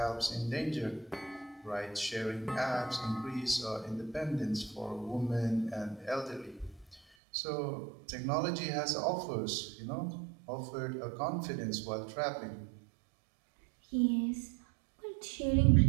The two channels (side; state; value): left; drops out; at 7.0 s